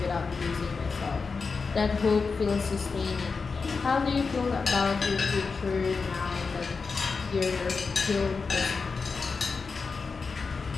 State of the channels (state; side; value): quieter; right; 4.7 dB